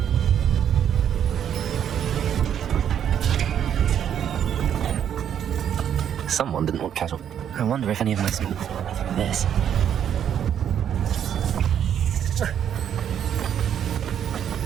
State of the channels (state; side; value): quieter; left; 9.2 dB